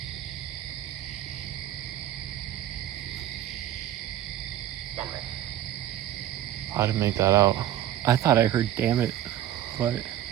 I didn't make that out. I thought I heard "damn it," but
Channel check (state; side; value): quieter; left; 12.2 dB